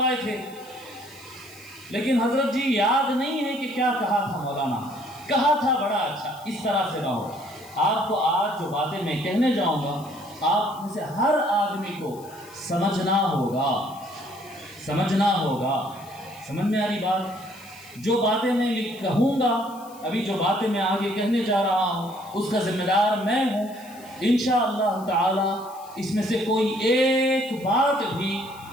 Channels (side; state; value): left; noise; hiss, 22 dB below the sound